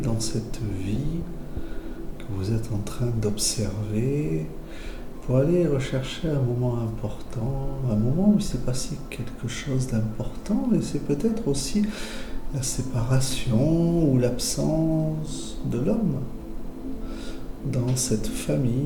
dans cette vie que vous êtes en train d'observer pour aller rechercher un moment important, un moment où il s'est passé quelque chose d'important et c'est peut-être aussi la séparation ou l'absence de l'homme dans cette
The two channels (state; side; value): identical; both; correlation 1.00